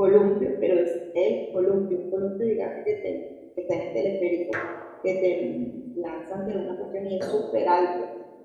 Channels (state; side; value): identical; both; correlation 1.00